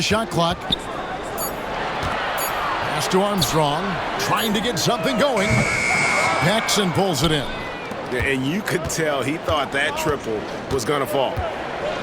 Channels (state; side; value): identical; both; correlation 1.00